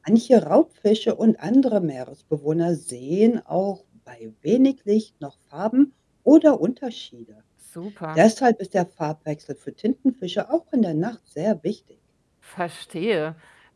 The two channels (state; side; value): identical; both; correlation 1.00